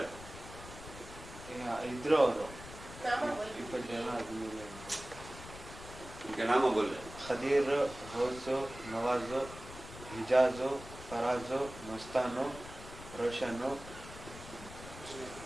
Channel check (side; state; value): left; noise; rumble, 14 dB below the sound